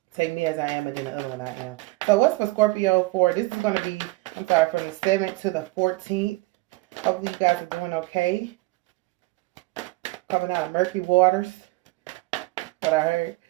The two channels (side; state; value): left; quieter; 22.8 dB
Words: Take Me As I Am, and then the other one, I Am. So what's for Scorpio for? This is going to be, from the 7th to the 14th. Hopefully you guys are doing okay. Coming out of murky waters. What I